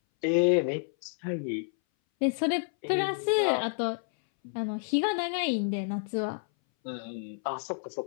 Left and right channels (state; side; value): silent; right; 58 dB below the other